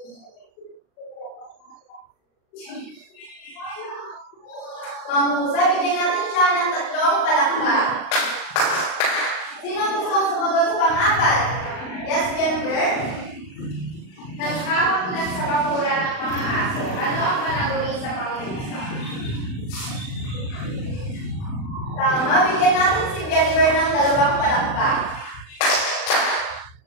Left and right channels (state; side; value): late; right; 39 ms